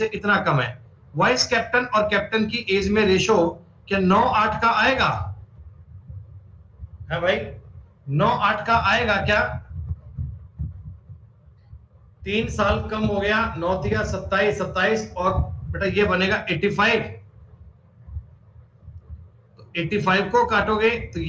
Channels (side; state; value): both; identical; correlation 1.00